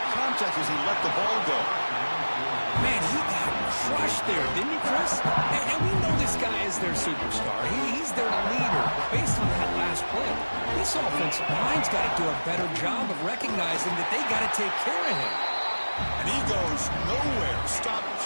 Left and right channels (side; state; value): both; inverted; correlation -1.00